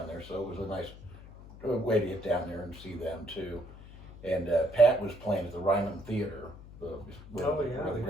there, so it was a nice way to get down there and see them too. And Pat was playing at the Ryman Theater, where the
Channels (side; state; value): left; noise; hum, 17 dB below the sound